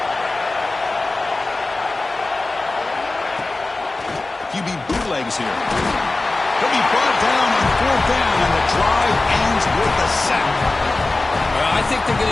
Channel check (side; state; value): right; quieter; 3.2 dB